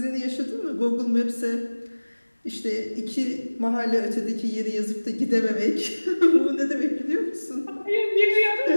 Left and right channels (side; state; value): both; inverted; correlation -1.00